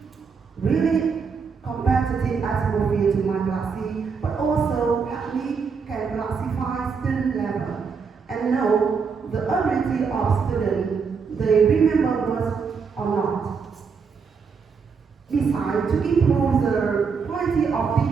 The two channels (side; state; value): left; quieter; 5.6 dB